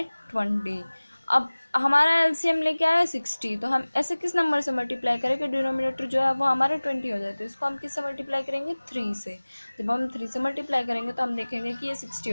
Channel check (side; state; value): both; inverted; correlation -1.00